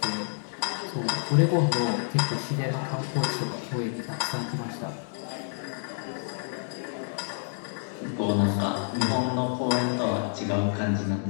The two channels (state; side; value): silent; right; digital silence